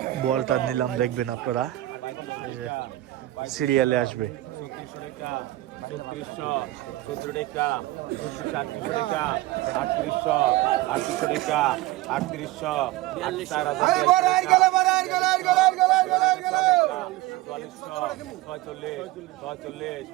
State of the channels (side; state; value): left; quieter; 17.1 dB